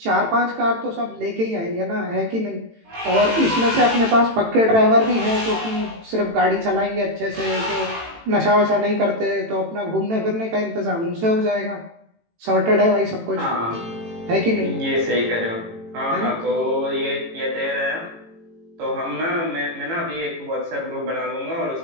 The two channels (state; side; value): late; left; 18 ms